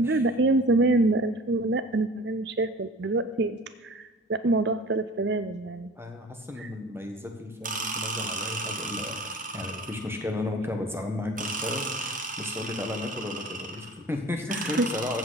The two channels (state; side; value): normal; both; correlation 0.42